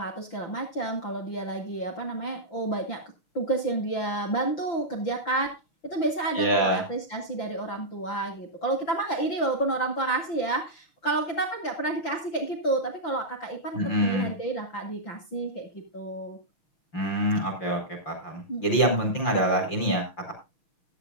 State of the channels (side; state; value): right; late; 5.9 ms